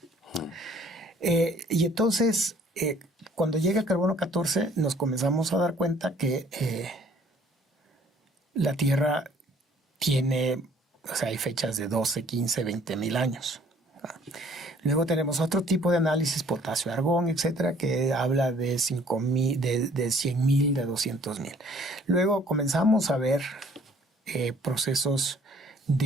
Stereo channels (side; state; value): both; normal; correlation 0.57